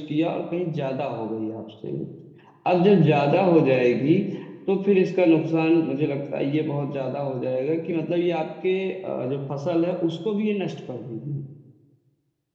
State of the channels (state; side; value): identical; both; correlation 1.00